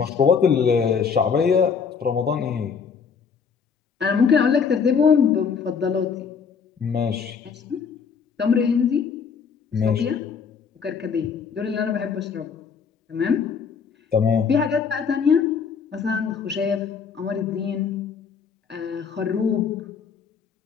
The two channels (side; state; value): right; quieter; 6.2 dB